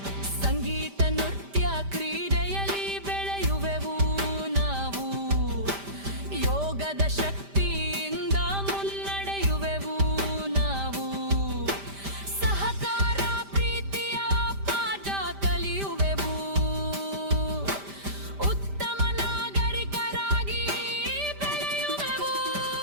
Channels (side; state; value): left; late; 5.1 ms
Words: ಸಂಗೀತ ನೃತ್ಯ ಕ್ರೀಡೆಯಲ್ಲಿ ಬೆಳೆಯುವೆವು ನಾವು. ಯೋಗದ ಶಕ್ತಿಯಿಂದ ಮುನ್ನಡೆಯುವೆವು ನಾವು. ಸಹಕಾರ ಪ್ರೀತಿಯ ಪಾಠ ಕಲಿಯುವೆವು, ಉತ್ತಮ ನಾಗರಿಕರಾಗಿ ಬೆಳೆಯುವೆವು.